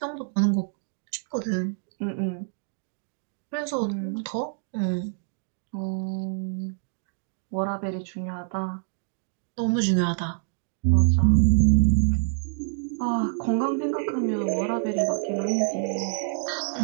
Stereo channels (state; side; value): silent; left; digital silence